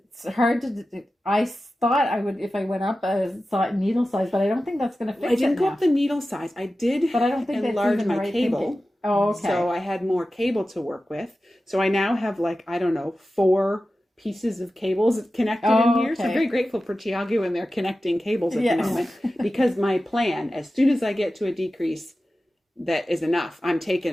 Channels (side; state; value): both; normal; correlation 0.94